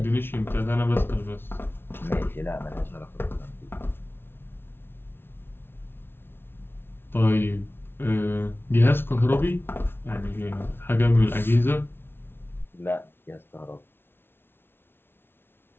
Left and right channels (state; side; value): late; right; 0.11 ms